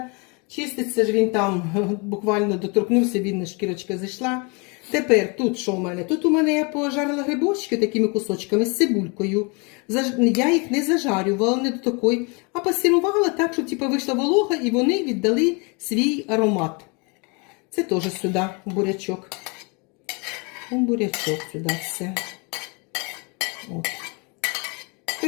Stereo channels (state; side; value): quieter; right; 31.6 dB